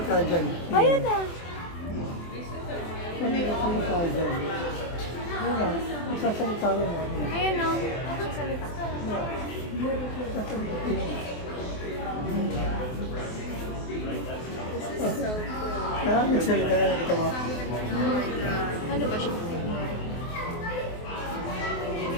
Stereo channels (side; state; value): right; late; 24 ms